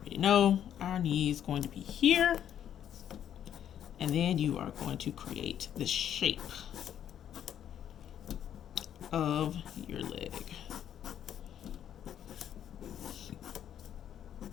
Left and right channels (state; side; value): quieter; right; 10.0 dB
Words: know our knee is going to be here. And then you are going to create the shape of your leg.